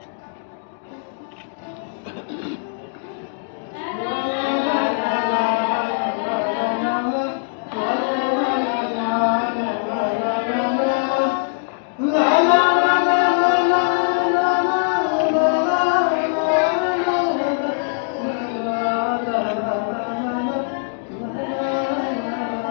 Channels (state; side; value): silent; right; digital silence